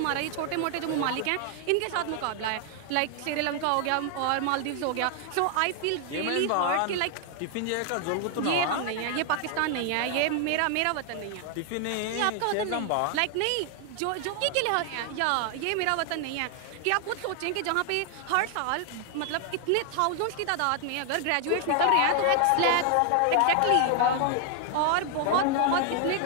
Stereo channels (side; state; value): both; different; correlation 0.00